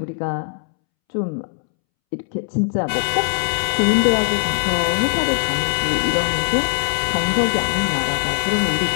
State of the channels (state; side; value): silent; right; 66 dB below the other